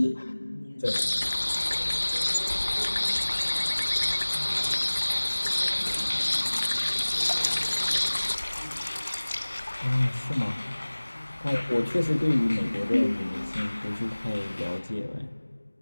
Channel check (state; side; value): inverted; both; correlation -1.00